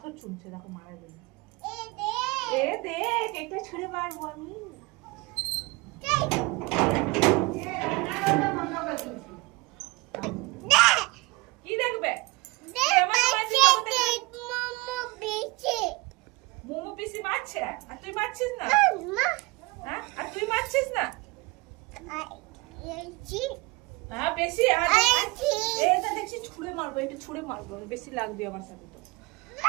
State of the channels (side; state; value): left; quieter; 23.4 dB